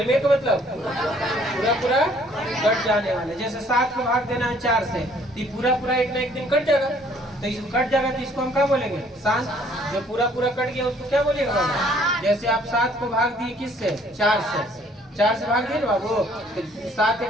का मतलब पूरा पूरा कट जाने वाले। जैसे 7 को भाग देना है 4 से, तो पूरा पूरा एक ना एक दिन कट जाएगा, तो इसको कट जाएगा तो इसको हम क्या बोलेंगे, शांत। जो पूरा पूरा कट गया उसको क्या बोलेगा बाबू। जैसे आप 7 को भाग दिए किससे, 4 से, 4 से भाग दिए ना बाबू, तो 7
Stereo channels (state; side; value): normal; both; correlation 0.60